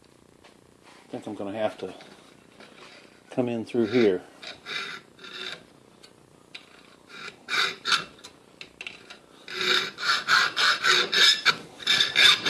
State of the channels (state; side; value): identical; both; correlation 1.00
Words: I think I'm going to have to come in through here.